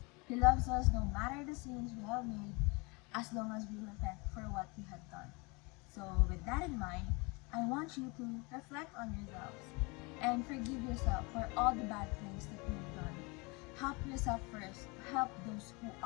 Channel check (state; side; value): quieter; right; 27.9 dB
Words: He loves us no matter the sins we have made, as long as we repent for what we have done. So with that in mind, I want you to reflect on yourselves and forgive yourself for all the bad things that you've done. Help yourself first to help those who